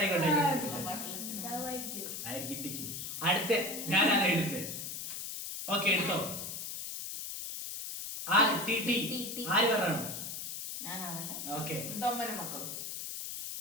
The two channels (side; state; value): left; noise; hiss, 6 dB below the sound